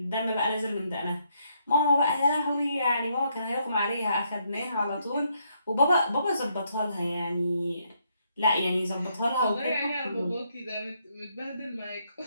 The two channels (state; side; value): inverted; both; correlation -0.75